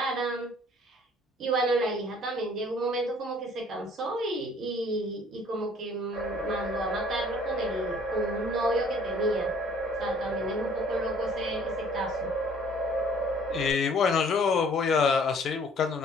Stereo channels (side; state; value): both; normal; correlation 0.56